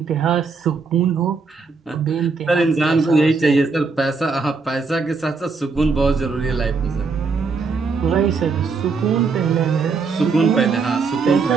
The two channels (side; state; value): left; quieter; 4.6 dB